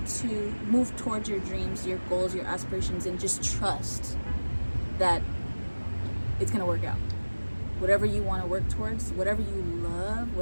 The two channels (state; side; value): inverted; both; correlation -1.00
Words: to move towards your dreams, your goals, your aspirations, and just trust that it's gonna work out. Whatever you want to work towards, whatever you love,